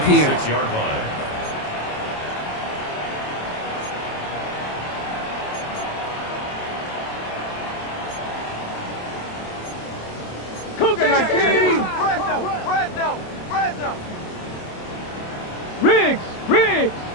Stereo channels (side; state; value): right; late; 27 ms